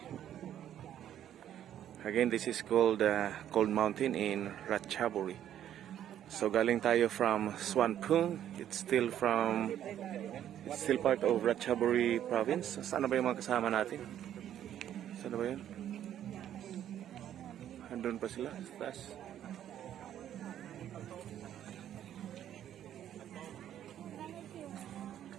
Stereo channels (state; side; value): quieter; left; 10.8 dB